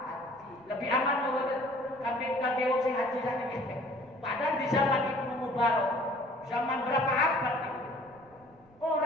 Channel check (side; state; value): right; noise; rumble, 29 dB below the sound